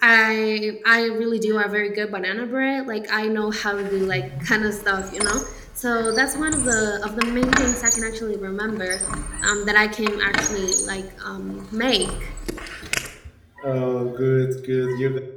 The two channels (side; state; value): both; identical; correlation 1.00